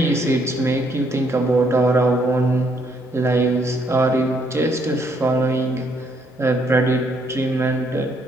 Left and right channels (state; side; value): normal; both; correlation 0.71